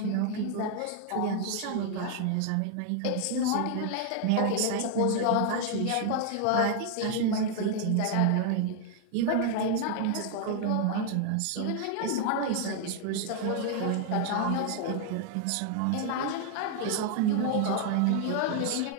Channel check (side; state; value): both; different; correlation 0.00